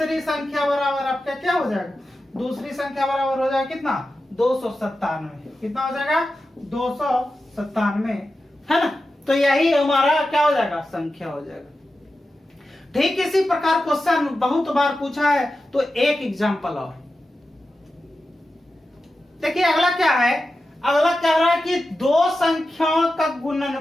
संख्या बराबर आपका क्या हो जाएगा, दूसरी संख्या बराबर हो जाएगा कितना 297, कितना हो जाएगा 297, है ना। तो यही हमारा क्या हो जाएगा संख्या हो जाएगा। ठीक इसी प्रकार क्वेश्चन बहुत बार पूछा है, तो एक एग्जांपल और देखिए। अगला क्या है, अगला कह रहा है कि दो संख्याओं का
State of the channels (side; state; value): both; normal; correlation 0.92